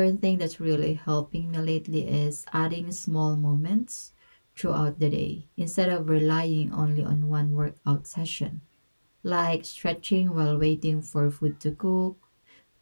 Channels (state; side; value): inverted; both; correlation -1.00